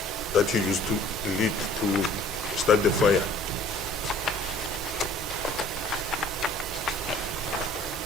that he used to lit to start the fire.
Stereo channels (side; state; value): both; normal; correlation 0.52